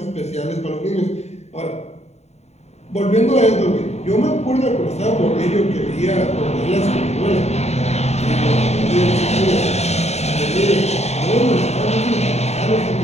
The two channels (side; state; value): right; late; 0.32 ms